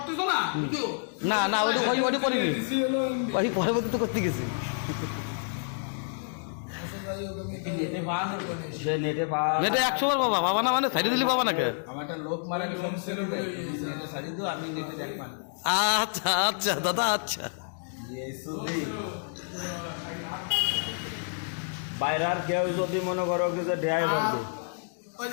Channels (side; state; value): right; silent; digital silence